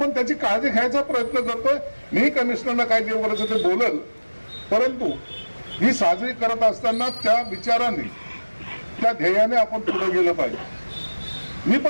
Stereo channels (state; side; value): inverted; both; correlation -1.00